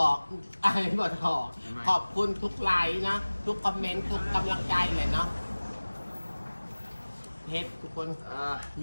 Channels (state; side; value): inverted; both; correlation -1.00